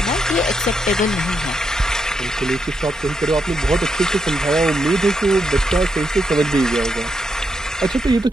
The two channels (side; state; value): both; normal; correlation 0.81